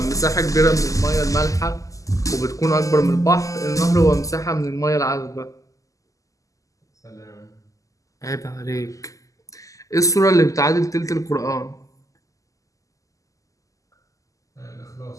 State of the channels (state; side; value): late; right; 0.16 ms